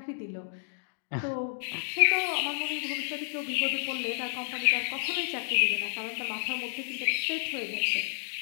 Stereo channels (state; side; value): silent; right; digital silence